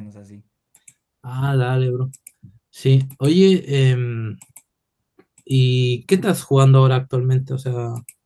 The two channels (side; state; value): both; identical; correlation 1.00